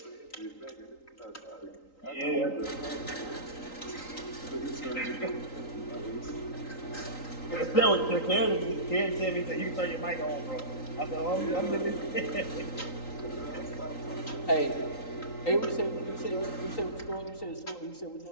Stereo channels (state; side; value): late; right; 3.8 ms